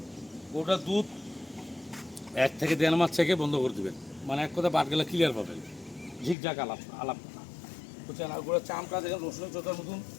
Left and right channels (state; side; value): drops out; right; at 6.4 s